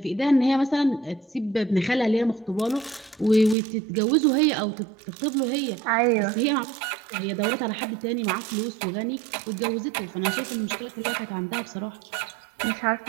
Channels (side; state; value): left; drops out; at 3.6 s